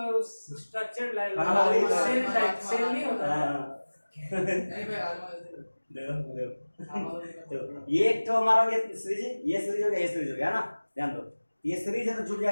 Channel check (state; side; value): inverted; both; correlation -1.00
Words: स्ट्रक्चर्ड लाइन हाँ, वही तो। सेल टाइप सेल नहीं होता है नहीं भाई आज देखो देखो तो ये एक तो हमारा ये सीरीज है, ये सीरीज हो गया, ये सीरीज हो गया ना। ध्यान दो, ये सीरीज है तो जुड़